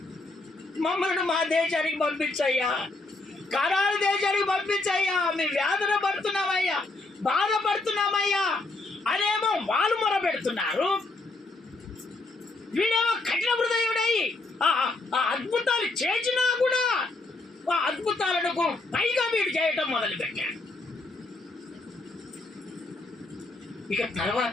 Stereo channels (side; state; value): right; quieter; 3.2 dB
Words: మమ్మల్ని మా దేశానికి పంపించయ్యా, కరారు దేశానికి పంపించయ్యా, మేము వేదన పడుతున్నామయ్యా, బాధపడుతున్నామయ్యా అనేమో వాళ్ళు మొర పెడుతున్నారు. వీడేమో కఠిన హృదయుడై ఆ అద్భుతాలు చేసినా కూడా ఆ అద్భుతాలకు పైగా వీడు చేయటం మొదలుపెట్టాడు. ఇక